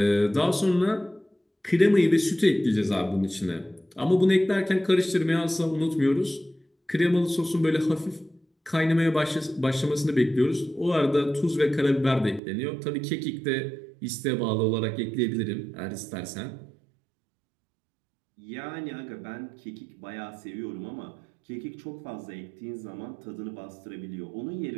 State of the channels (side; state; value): left; drops out; at 12.4 s